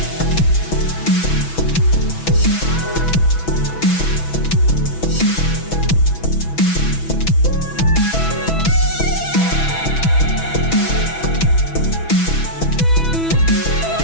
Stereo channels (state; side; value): late; right; 6.1 ms